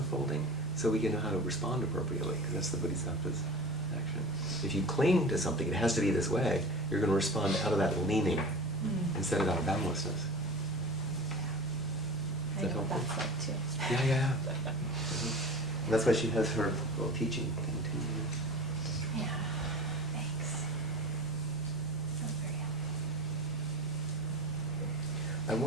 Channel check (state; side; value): noise; left; hum, 18 dB below the sound